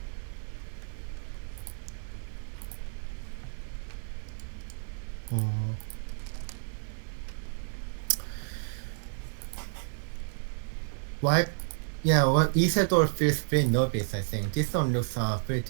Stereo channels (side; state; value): left; silent; 57 dB below the other